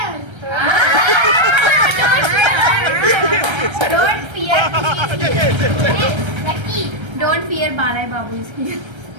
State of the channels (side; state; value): left; late; 1.3 ms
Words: Don't fear. Lucky. Don't fear Balayya Babu is here.